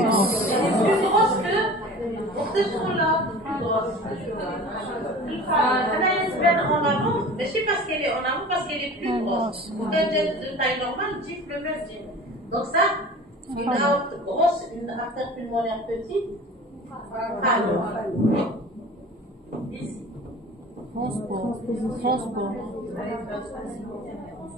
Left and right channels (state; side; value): normal; both; correlation 0.40